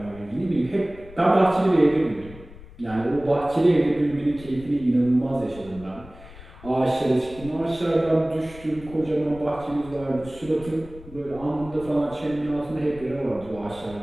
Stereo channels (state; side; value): noise; left; rumble, 18 dB below the sound